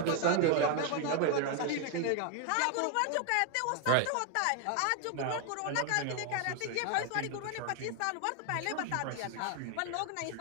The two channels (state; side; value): different; both; correlation 0.01